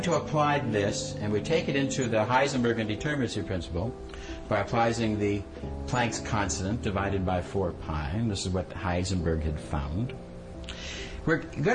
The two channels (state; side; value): identical; both; correlation 1.00